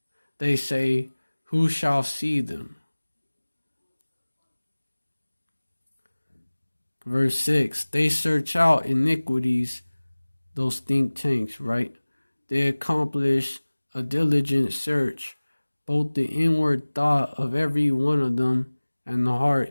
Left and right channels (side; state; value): both; inverted; correlation -1.00